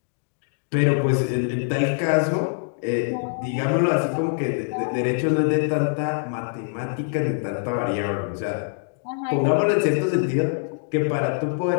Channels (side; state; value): right; silent; digital silence